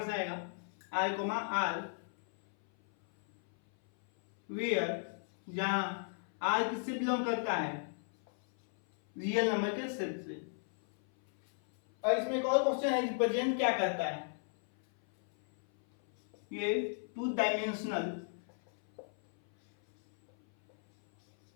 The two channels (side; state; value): right; silent; 55 dB below the other